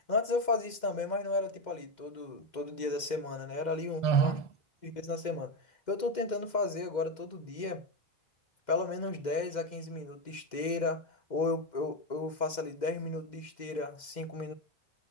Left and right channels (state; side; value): late; right; 2.1 ms